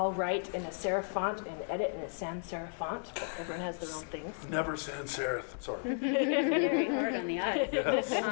write in a serif font and edit in a sans serif font, but everyone has their own things. Never sans serif. Sorry. Very hard on the eye. Yes.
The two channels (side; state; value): right; silent; 55 dB below the other